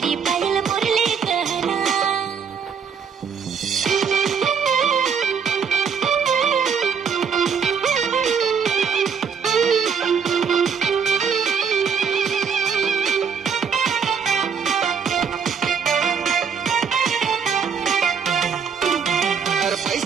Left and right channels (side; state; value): left; quieter; 6.5 dB